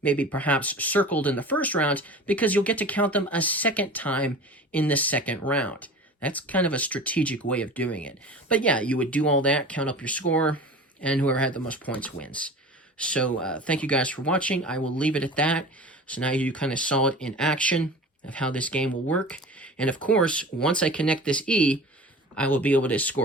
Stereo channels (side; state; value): both; normal; correlation 0.37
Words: maybe perhaps circled in the first round, because you'll get to count them a second time in the second round. That's kind of a strategic way of doing it. But yeah, you would do all that, count up your score, and whoever had the most points wins. So thank you guys for watching. I will leave it at that. So now you kind of saw it in action of how this game will work. And of course, once I connect this E, I will be able to